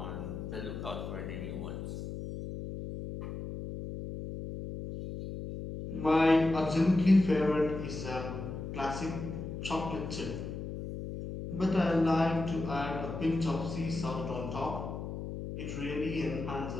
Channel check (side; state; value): left; noise; hum, 7 dB below the sound